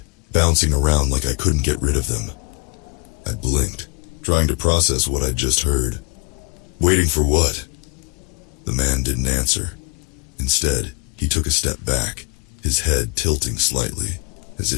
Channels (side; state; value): right; quieter; 27.5 dB